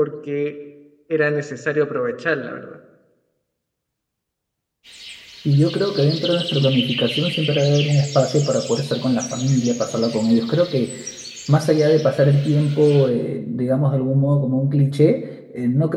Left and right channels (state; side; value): identical; both; correlation 1.00